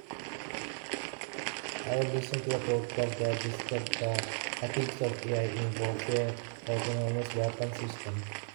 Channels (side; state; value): left; silent; 55 dB below the other